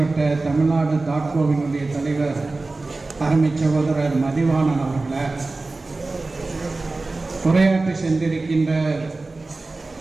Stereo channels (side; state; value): left; quieter; 3.4 dB